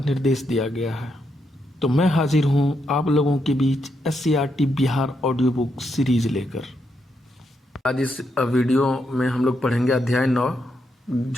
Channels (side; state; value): both; normal; correlation 0.80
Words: दिया गया है। तो मैं हाजिर हूं आप लोगों के बीच SCERT Bihar audio book series लेकर। आज इस वीडियो में हम लोग पढ़ेंगे अध्याय 9